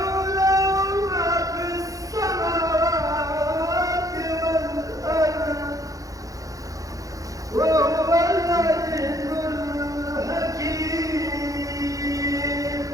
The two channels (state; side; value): late; left; 0.17 ms